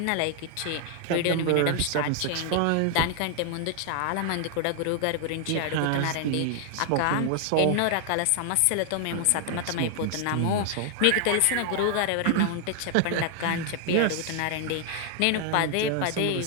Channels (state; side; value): different; both; correlation 0.00